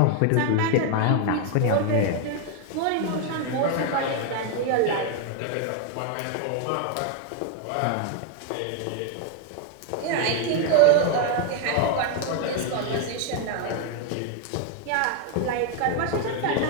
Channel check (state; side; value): different; both; correlation 0.00